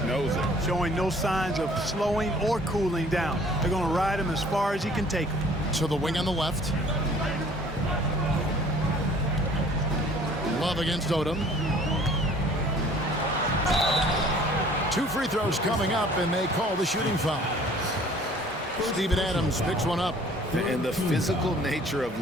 knows it. Showing no signs of slowing or cooling down. They're going to ride him as far as he can take him. To the wing on the left. Love against Odom. 2 free throws coming up, and they call the shooting foul. Steven Adams picks one up. And the physical nature of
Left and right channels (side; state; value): both; normal; correlation 0.53